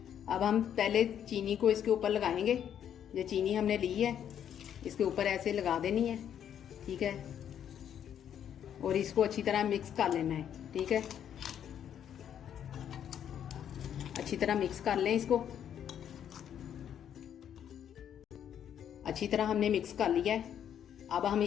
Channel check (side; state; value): right; quieter; 9.4 dB